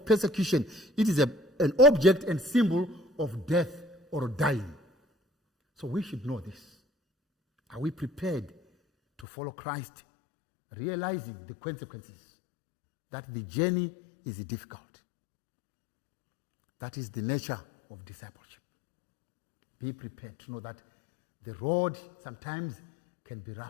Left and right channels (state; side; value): drops out; right; at 9.2 s